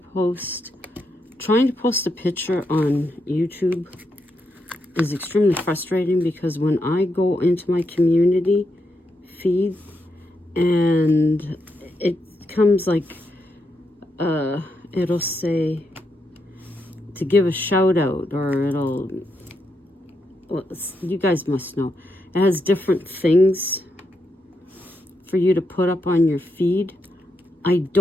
post, trying to post a picture on YouTube is extremely frustrating, because when I go into my community feed and it comes like, it'll say to give a shout out, or it'll, well, you guys must know, it has different things for you to put up on your feed. I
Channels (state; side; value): normal; both; correlation 0.82